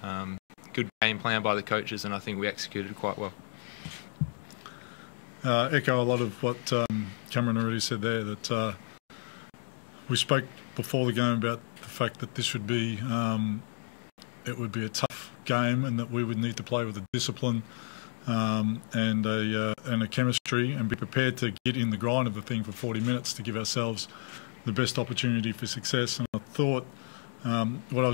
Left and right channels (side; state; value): right; silent; digital silence